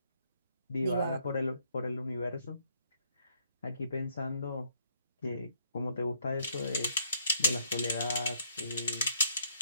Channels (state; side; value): inverted; both; correlation -0.68